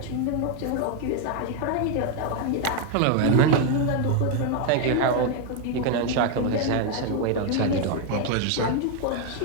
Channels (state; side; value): different; both; correlation 0.01